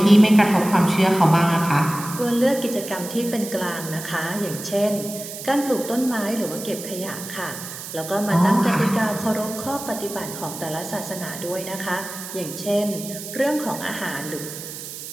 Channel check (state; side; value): noise; right; hiss, 10 dB below the sound